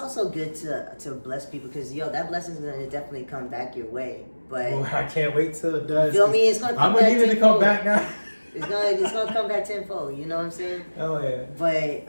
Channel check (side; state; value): both; inverted; correlation -1.00